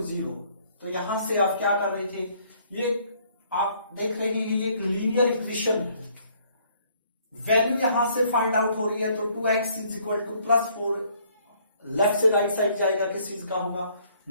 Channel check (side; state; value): both; inverted; correlation -0.63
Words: 0। तो यहां से आप क्या कर रहे थे, ये आप देख रहे हैं ये एक लीनियर इक्वेशन है। वैल्यू यहां से फाइंड आउट हो रही है, तो 2x = +4 लेफ्ट से राइट साइड जाएगा, किस चीज का होगा